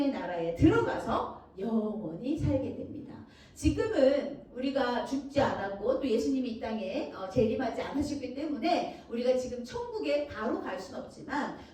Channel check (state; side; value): identical; both; correlation 1.00